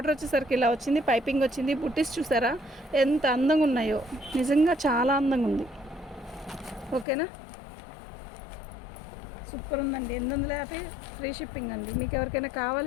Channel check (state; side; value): drops out; right; at 7.1 s